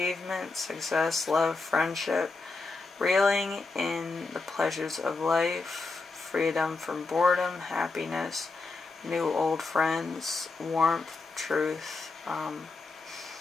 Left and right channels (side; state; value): right; quieter; 3.8 dB